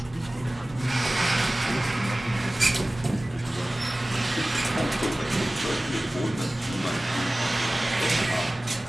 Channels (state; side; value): normal; both; correlation 0.98